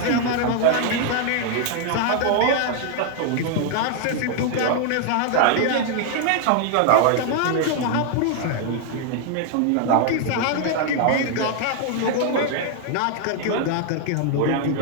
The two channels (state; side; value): different; both; correlation 0.00